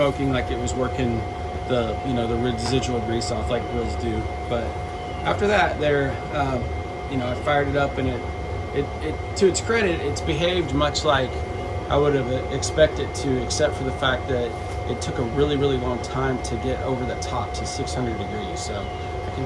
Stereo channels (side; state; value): both; identical; correlation 1.00